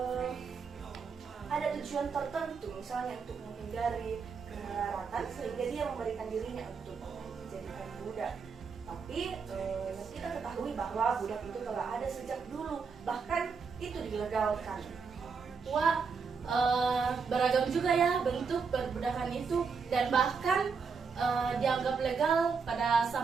ada tujuan tertentu, misalnya untuk menghindari kemelaratan, sehingga dia memberikan dirinya untuk dijadikan budak. Tapi kita ketahui bahwa budak itu telah ada sejak dulu, bahkan itu dilegalkan. Wah, beragam juga ya bentuk perbudakan itu, dan bahkan dianggap legal pada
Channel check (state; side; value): quieter; left; 5.4 dB